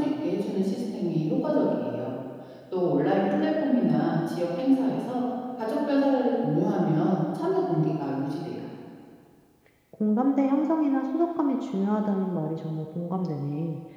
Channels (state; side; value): identical; both; correlation 1.00